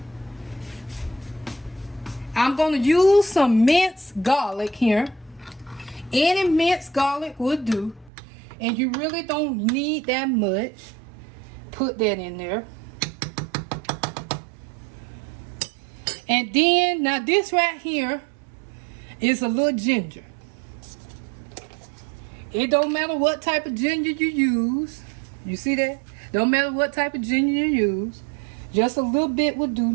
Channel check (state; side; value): drops out; left; at 8.1 s